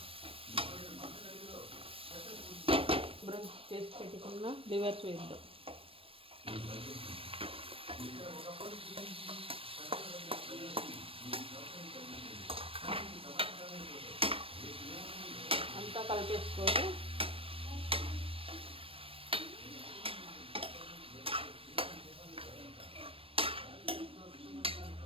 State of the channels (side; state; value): left; late; 0.27 ms